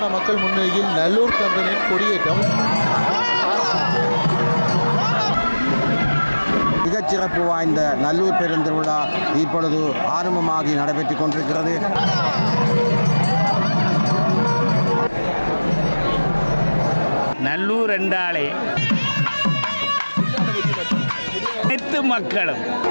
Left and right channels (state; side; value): inverted; both; correlation -1.00